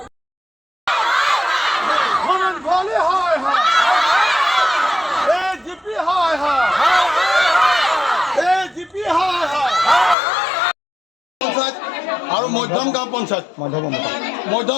ভবেন ভৰালী হয় হয় এজিপি হয় হয় এজিপি হয় হয় পঞ্চায়ত আৰু মধ্যম গাঁও পঞ্চায়ত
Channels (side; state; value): right; drops out; at 10.2 s